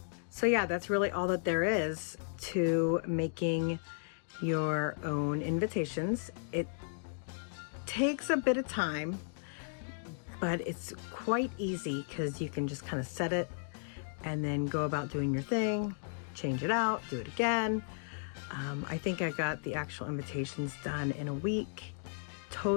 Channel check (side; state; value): right; silent; digital silence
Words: So yeah, that's really all that there is to making your own invitations. It takes a bit of time, but it's quite easy because you can just kind of set it and then go about doing your thing, change it out, do it again. I think I got the actual invitations done in a week